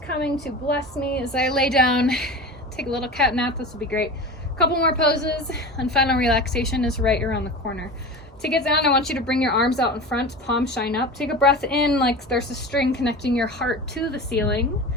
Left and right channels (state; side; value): normal; both; correlation 0.31